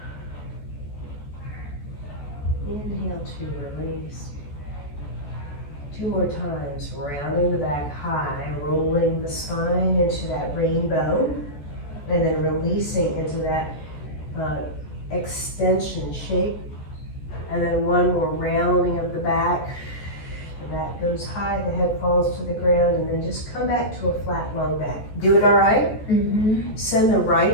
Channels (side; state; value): right; late; 14 ms